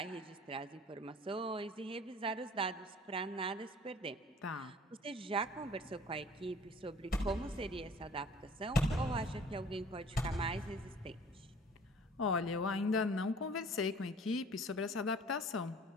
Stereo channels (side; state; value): both; normal; correlation 0.49